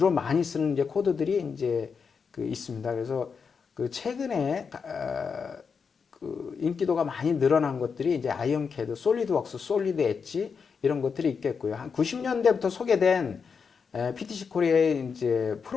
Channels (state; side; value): quieter; right; 5.8 dB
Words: 많이 쓰는 이제 코드들이 이제 그 있습니다. 그래서 그 최근에 그 인기도가 많이 늘어난 것들이 이제 아이언캐드, 솔리드웍스, 솔리드 엣지 이런 것들이 있겠고요. 한 90년대부터 소개된 PTC 코리아의 이제